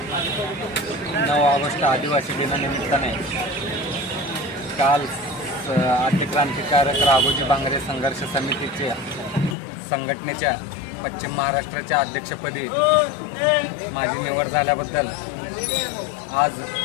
9 ऑगस्ट आदिवासी दिनानिमित्ताने काल आद्य क्रांतिकारक राघोजी बांगरे संघर्ष समितीच्या संघटनेच्या पश्चिम महाराष्ट्राच्या अध्यक्षपदी माझी निवड झाल्याबद्दल आज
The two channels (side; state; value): right; drops out; at 9.6 s